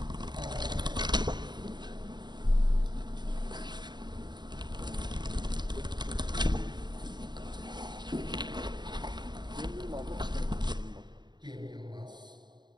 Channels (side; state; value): left; late; 0.21 ms